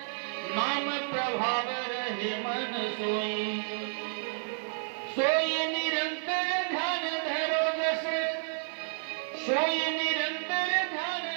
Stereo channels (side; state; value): left; silent; digital silence